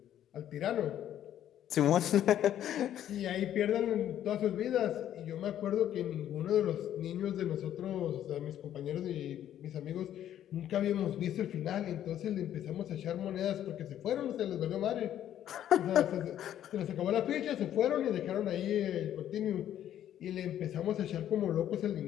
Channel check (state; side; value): quieter; right; 11.1 dB